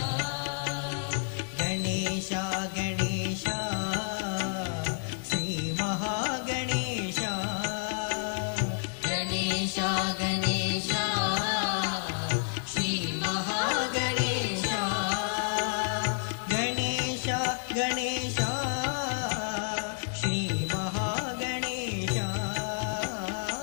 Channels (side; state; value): right; silent; 58 dB below the other